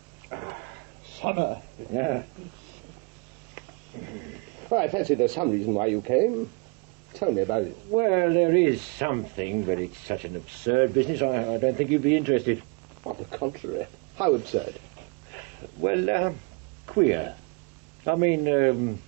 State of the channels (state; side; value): quieter; left; 32.4 dB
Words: Summer. Yeah. Well, I fancy there's some reason why you came. Tell me about it. Well, there is something, but it's such an absurd business, I don't think you'd be interested. On the contrary. How absurd. Well, queer. I mean,